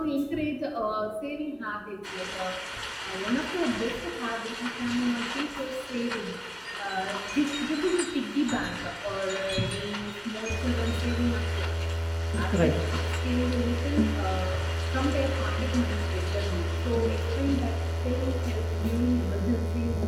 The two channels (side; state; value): both; identical; correlation 1.00